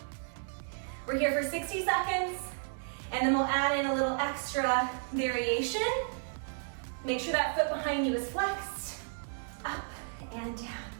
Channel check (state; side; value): silent; left; digital silence